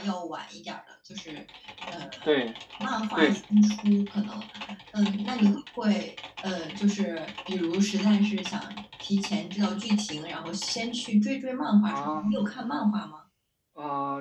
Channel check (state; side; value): identical; both; correlation 1.00